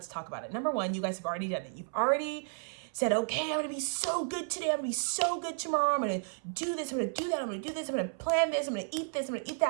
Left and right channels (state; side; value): silent; left; 56 dB below the other